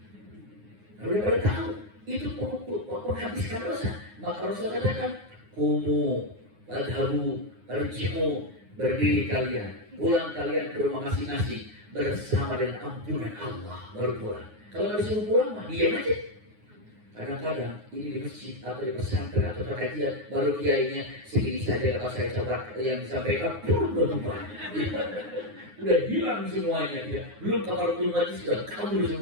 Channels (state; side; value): late; left; 9.6 ms